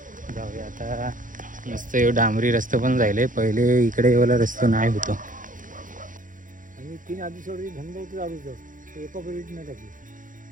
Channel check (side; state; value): left; late; 0.38 ms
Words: जाऊया आता. मस्त एवढं डांबरी रस्ता पण जायले. पहिले इकडे एवढा रस्ता नाही होतो. आणि 3 आदिवासी धंदा होतं दारूचं. ते एका परिस्थिती नाही